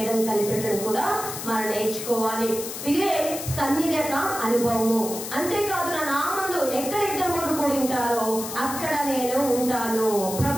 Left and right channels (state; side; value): noise; left; hiss, 8 dB below the sound